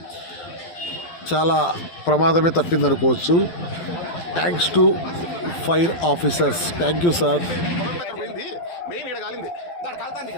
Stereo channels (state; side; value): late; right; 12 ms